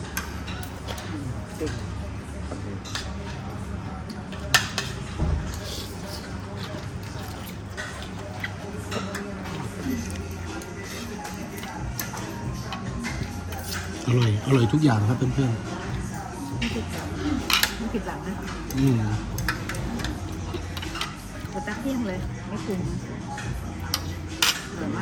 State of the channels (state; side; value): identical; both; correlation 1.00